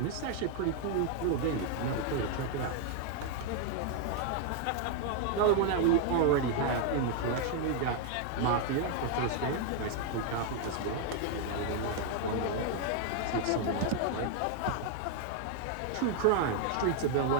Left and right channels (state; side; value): different; both; correlation 0.00